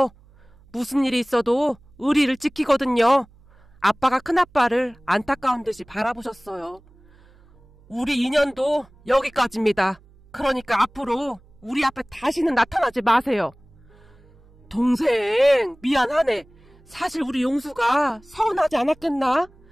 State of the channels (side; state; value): right; noise; hum, 28 dB below the sound